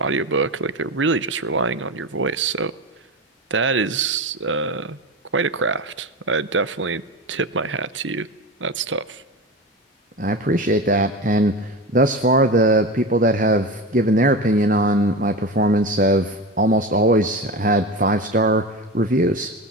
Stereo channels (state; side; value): normal; both; correlation 0.24